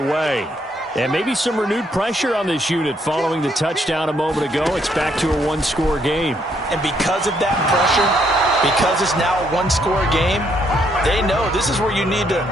And maybe some renewed pressure on this unit following the touchdown a moment ago. It's back to a 1-score game. And because of that pressure, because it's now a 1-score game, they know this is where you need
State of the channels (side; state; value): both; normal; correlation 0.72